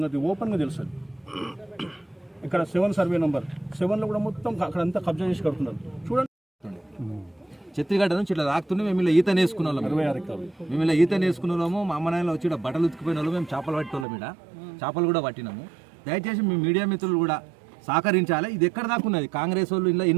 ఓపెన్గా తెలుస్తుంది. ఇక్కడ 7 సర్వే నెంబర్ 7లో కూడా మొత్తం అక్కడంతా కబ్జా చేసి కడుతున్నారు. చూడండి, చెత్తిగడ్డ నుంచి ఇట్లా రాకుతుండే మేము ఇలా ఈత నేసుకున్న వాళ్ళం. 26 ఎకరాలు మేము ఇలా ఈత నేసుకున్న వాళ్ళము. మా అమ్మ నాయనలు వచ్చి బట్టలు ఉతికిపోయిన వాళ్ళు, మేము చేపలు పట్టేవాళ్ళం. ఇక్కడ చేపలు కూడా పట్టినాము. దయచేసి మీ మీడియా మిత్రులు కూడా సహకరించాలి. ఇది ఎక్కడ దాకా ఉన్నది, కాంగ్రెస్ వాళ్ళు ఇలా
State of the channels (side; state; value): left; drops out; at 14.1 s